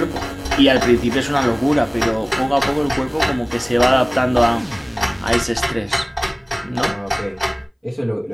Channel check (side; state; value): both; identical; correlation 1.00